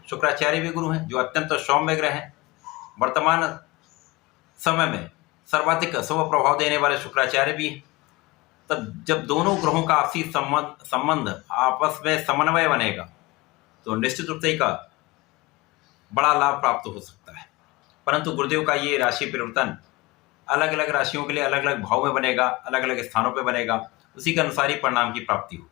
शुक्राचार्य भी गुरु हैं, जो अत्यंत सौम्य ग्रह हैं। वर्तमान समय में सर्वाधिक शुभ प्रभाव देने वाले शुक्राचार्य भी हैं। तब जब दोनों ग्रहों का आपसी संबंध आपस में समन्वय बनेगा तो निश्चित रूप से एक बड़ा लाभ प्राप्त हो सकता है। परंतु गुरुदेव का ये राशि परिवर्तन अलग अलग राशियों के लिए अलग अलग भाव में बनेगा, अलग अलग स्थानों पर बनेगा, उसी के अनुसार ही परिणाम की प्राप्ति हो।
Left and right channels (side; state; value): right; quieter; 22.4 dB